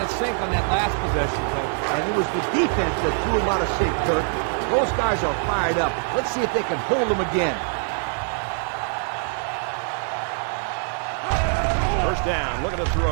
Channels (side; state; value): left; silent; 55 dB below the other